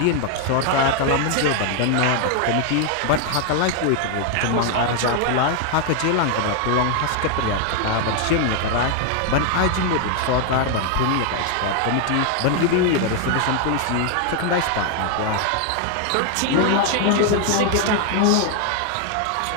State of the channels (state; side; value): different; both; correlation 0.00